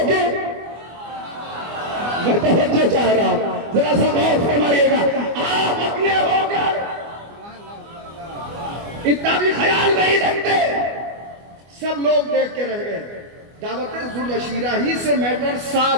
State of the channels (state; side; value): late; left; 24 ms